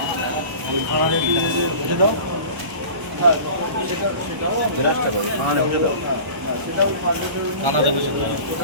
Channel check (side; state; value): left; late; 1.0 ms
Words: দাও কানাডা বসে